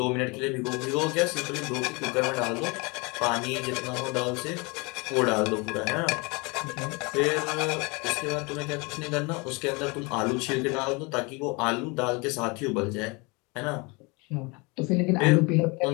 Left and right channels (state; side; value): quieter; right; 28.1 dB